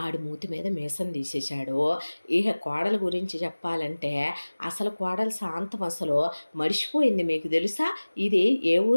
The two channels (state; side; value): inverted; both; correlation -1.00